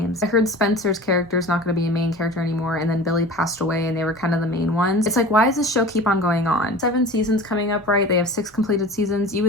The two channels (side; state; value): both; normal; correlation 0.38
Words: I heard Spencer's character is not going to be a main character anymore, and then Billy passed away and they were kind of the main ones. It's like, why does this show keep on going on? 7 seasons coming up, right? They have 6 completed seasons. You